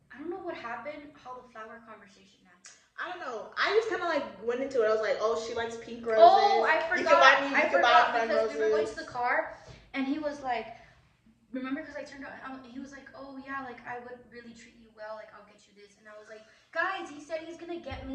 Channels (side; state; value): both; identical; correlation 1.00